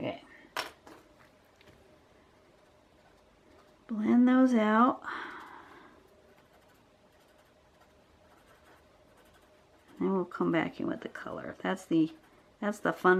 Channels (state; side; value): identical; both; correlation 1.00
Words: Blend those out. And we'll come back in with the color. That's the